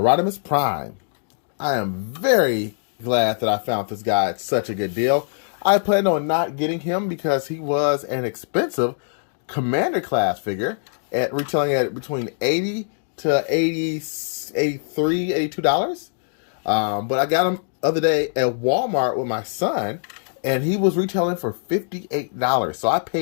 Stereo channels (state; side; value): silent; right; digital silence